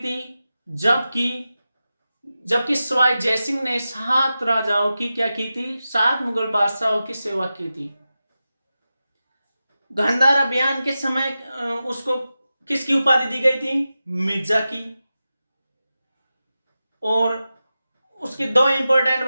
जबकि सवाई जयसिंह ने 7 राजाओं की क्या की थी? 7 मुगल बादशाहों की सेवा की थी। गांधार अभियान के समय उसको किसकी उपाधि दी गई थी? मिर्जा की। और उसकी 2 इंपॉर्टेंट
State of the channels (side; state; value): both; inverted; correlation -0.93